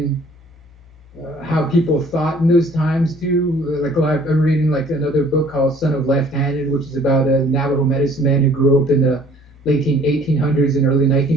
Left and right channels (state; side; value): normal; both; correlation 0.55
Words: how people thought in those times too. I'm reading another book called Son of Left-Handed, which is about a Navajo medicine man who grew up in the late 1800s and early